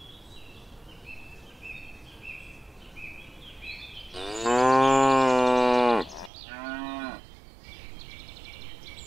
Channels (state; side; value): drops out; left; at 6.3 s